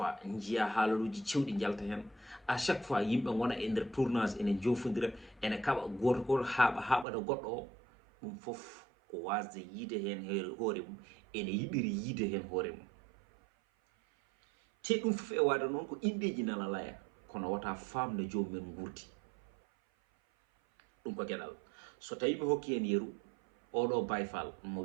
jiya haalaluji cewɗi jalta hen à chaque fois yimɓe gona e nder tournage ene jofodira ene kaɓa goto goto haɓata goɗɗo o ɗum foof ko wasde yiide hen hoore mum ene yiɗiri yiide hen hoore mum te ɗum foof e wade noon ko indeji nana laya kono wata famde jomumen gurdi ɗum ko gueɗal so tawi mi hokki hen yeru oɗo bayfal mo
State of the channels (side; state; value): left; drops out; at 7.1 s